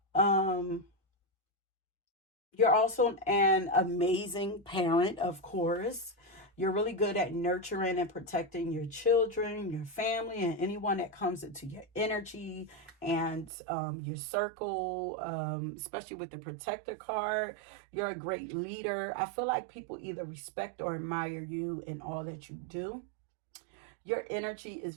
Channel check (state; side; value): drops out; left; at 13.5 s